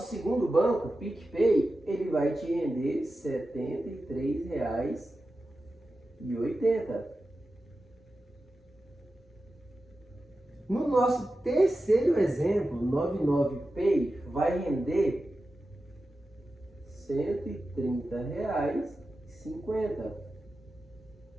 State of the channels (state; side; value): normal; both; correlation 0.92